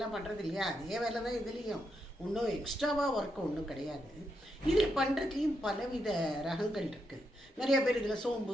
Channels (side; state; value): both; normal; correlation 0.82